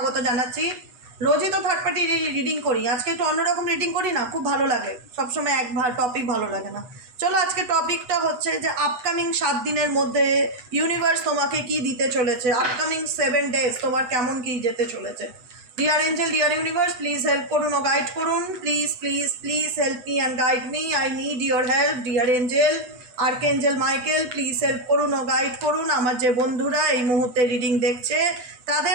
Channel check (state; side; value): late; left; 8.0 ms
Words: জানাচ্ছি। রোজই তো থার্ড পার্টি রিডিং করি, আজকে একটু অন্যরকম রিডিং করি না, খুব ভালো লাগে। সবসময় এক টপিক ভালো লাগে না। চলো, আজকে টপিকটা হচ্ছে যে আপকামিং 7 দিনের মধ্যে ইউনিভার্স তোমাকে কি দিতে চলেছে, আপকামিং 7 ডেজ তোমার কেমন কি যেতে চলেছে। Dear angel, deer universe, please help করুন ও গাইড করুন। Please please please help me and guide me. I need your help. Dear angel, archangel Michael, please help করুন ও গাইড করুন। আমার যে বন্ধুরা এই মুহূর্তে রিডিং দেখছে তাদের